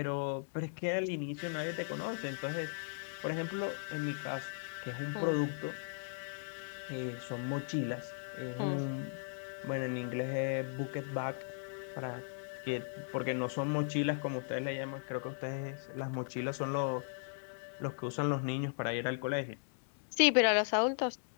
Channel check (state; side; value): silent; right; digital silence